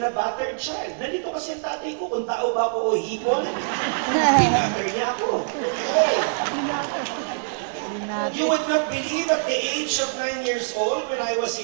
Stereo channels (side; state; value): left; silent; digital silence